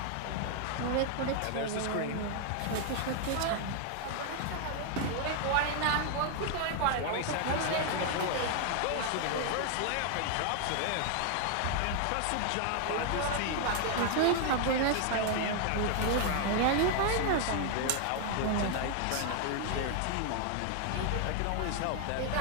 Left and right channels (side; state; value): both; different; correlation 0.00